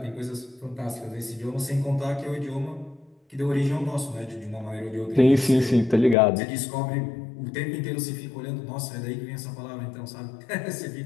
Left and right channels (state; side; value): drops out; right; at 6.2 s